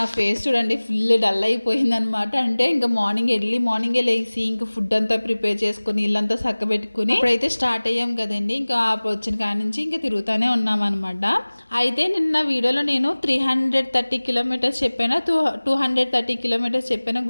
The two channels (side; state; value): both; inverted; correlation -1.00